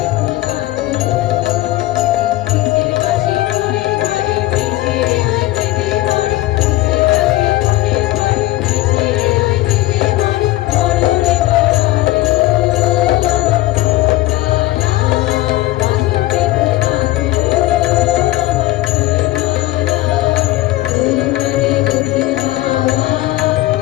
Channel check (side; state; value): right; quieter; 17.0 dB